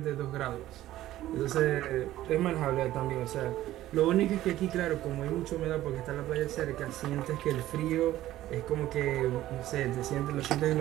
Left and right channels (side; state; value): left; quieter; 14.5 dB